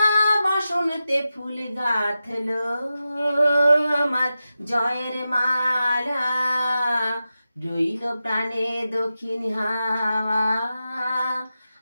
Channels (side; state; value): both; inverted; correlation -0.92